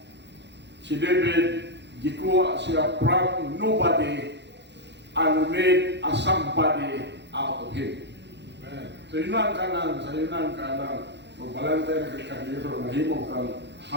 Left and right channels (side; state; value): left; late; 0.51 ms